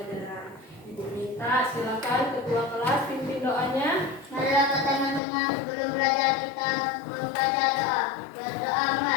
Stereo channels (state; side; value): drops out; right; at 5.2 s